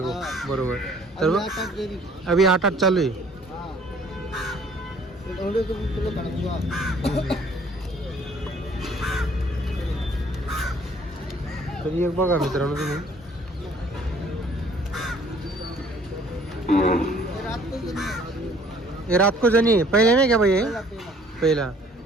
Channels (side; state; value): both; normal; correlation 0.57